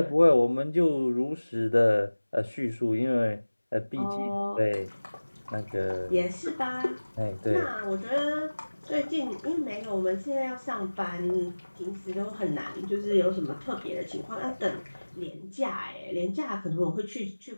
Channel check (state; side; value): inverted; both; correlation -1.00